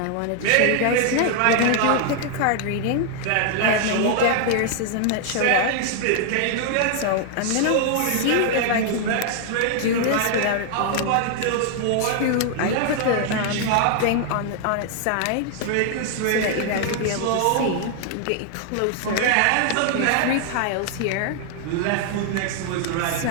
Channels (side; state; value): both; different; correlation 0.00